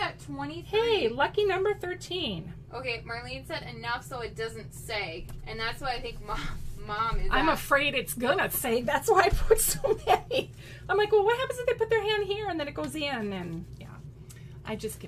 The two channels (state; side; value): identical; both; correlation 1.00